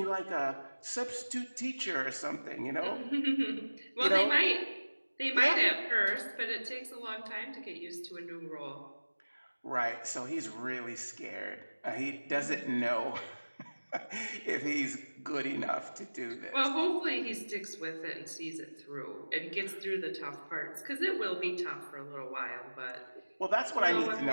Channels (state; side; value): inverted; both; correlation -1.00